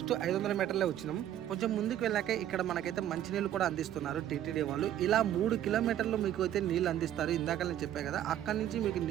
500 మీటర్లే వచ్చినాం. కొంచెం ముందుకు వెళ్ళాక ఇక్కడ మనకైతే మంచినీళ్ళు కూడా అందిస్తున్నారు టీటీడీ వాళ్ళు. ఇలా 3 కిలోమీటర్లు మీకు అయితే నీళ్ళు అందిస్తారు. ఇందాక నేను చెప్పాను కదా, అక్కడి నుంచి మీకు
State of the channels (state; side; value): quieter; left; 11.6 dB